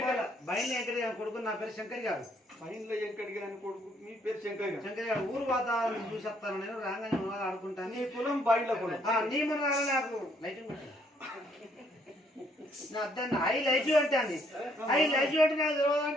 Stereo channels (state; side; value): normal; both; correlation 0.68